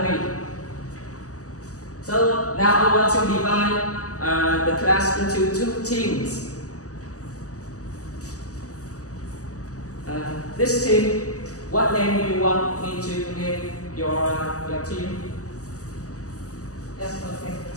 So now I want to divide the class into two teams. This team, what name do you want me to give your team? Yes, okay.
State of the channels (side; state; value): right; late; 0.66 ms